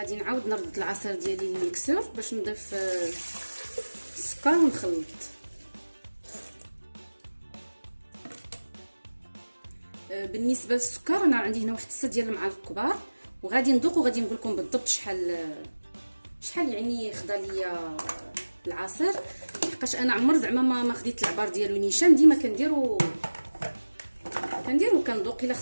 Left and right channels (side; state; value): both; inverted; correlation -1.00